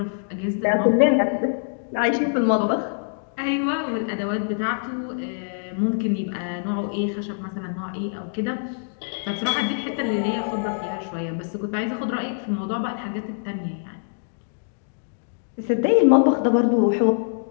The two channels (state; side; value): silent; right; digital silence